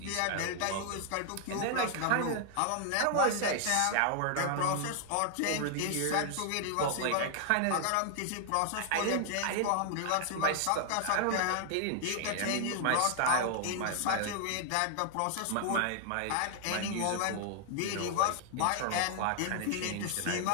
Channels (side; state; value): both; different; correlation 0.00